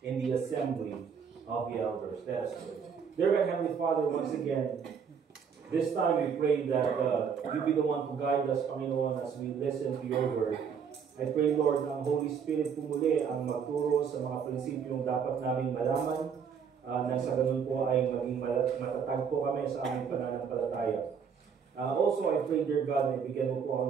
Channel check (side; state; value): left; quieter; 6.8 dB